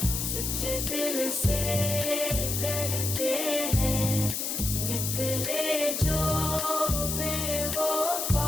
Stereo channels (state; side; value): noise; left; hiss, 2 dB below the sound